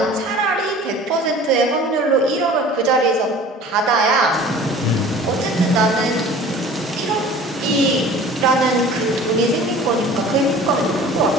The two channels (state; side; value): normal; both; correlation 0.44